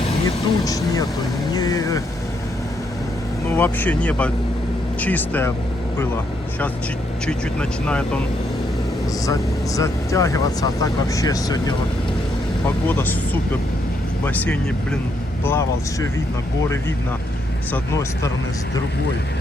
Ни туч нету, ну вообще небо чистое было. Сейчас чуть-чуть начинает он затягиваться, а так вообще сегодня вот погода супер. В бассейне, блин, плавал, все видно, горы видно с одной стороны, с другой.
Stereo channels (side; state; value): both; normal; correlation 0.76